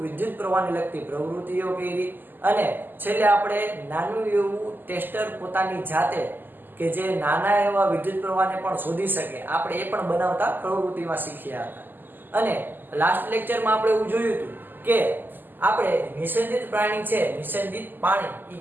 વિદ્યુત પ્રવાહને લગતી પ્રવૃત્તિઓ કરી અને છેલ્લે આપણે નાનું એવું ટેસ્ટર પોતાની જાતે કે જે નાના એવા વિદ્યુત પ્રવાહને પણ શોધી શકે આપણે એ પણ બનાવતા પ્રવૃત્તિમાં શીખ્યા હતા. અને લાસ્ટ લેક્ચરમાં આપણે એવું જોયું હતું કે આપણે નિષેધિત પ્રાણી છે, નિષેધિત પાણી એ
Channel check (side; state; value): left; late; 0.090 ms